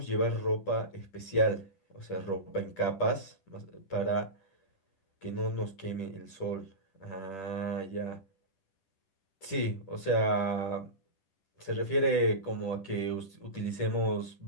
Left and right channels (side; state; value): right; late; 10 ms